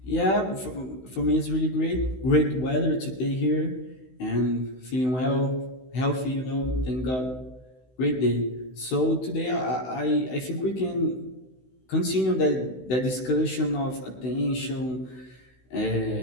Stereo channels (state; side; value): late; right; 16 ms